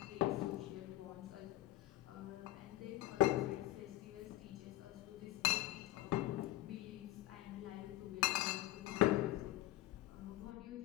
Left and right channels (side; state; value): right; quieter; 16.4 dB